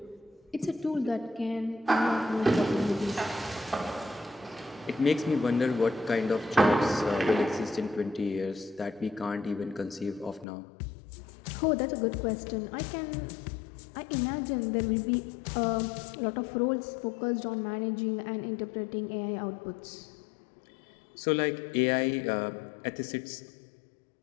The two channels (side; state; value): right; drops out; at 10.5 s